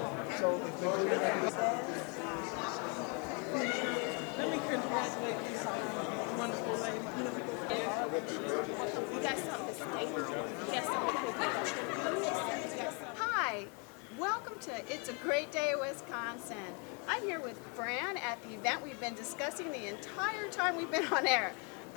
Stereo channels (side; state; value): right; quieter; 34.9 dB